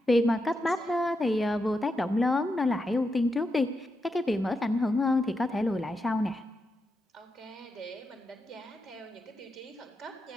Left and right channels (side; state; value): both; normal; correlation 0.86